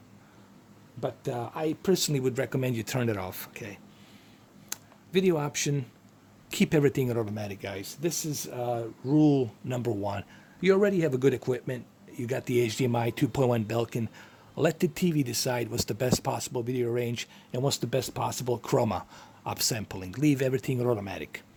But I personally would recommend you turn it off, okay? Video option, keep everything at automatic, guys. This is rule number 1. You already have a good equipment. You got the HDMI 2.1 Belkin. Let the TV decide what's the best possible video range and what's the best possible chroma upsampling. Leave everything at automatic.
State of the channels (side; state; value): both; identical; correlation 1.00